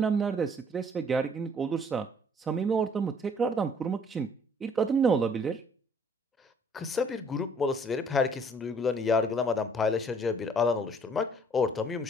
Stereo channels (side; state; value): both; normal; correlation 0.60